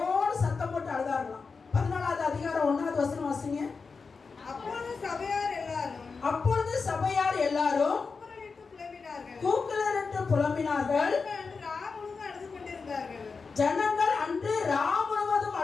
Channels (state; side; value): quieter; right; 4.8 dB